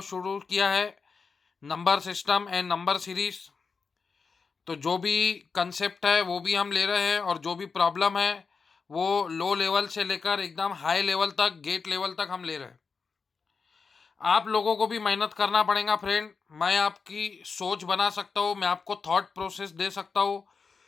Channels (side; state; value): right; quieter; 5.1 dB